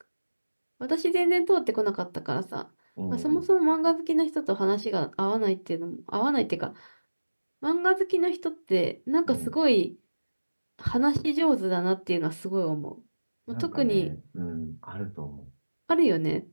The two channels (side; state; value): both; inverted; correlation -1.00